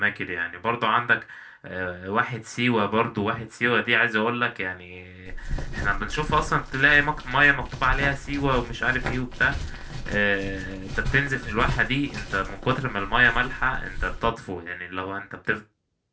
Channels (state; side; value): identical; both; correlation 1.00